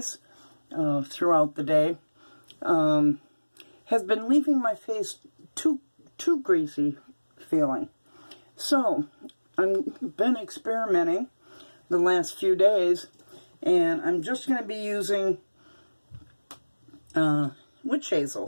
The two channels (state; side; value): inverted; both; correlation -1.00